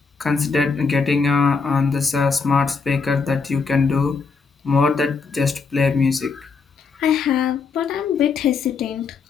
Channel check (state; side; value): quieter; right; 5.0 dB